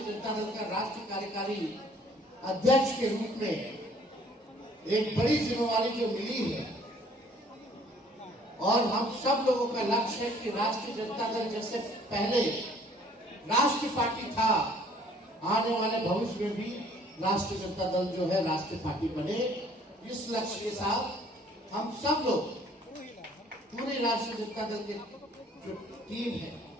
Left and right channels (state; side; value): normal; both; correlation 0.58